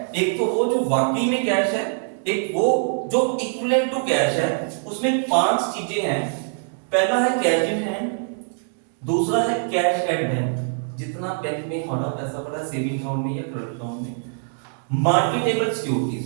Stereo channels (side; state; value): left; silent; 63 dB below the other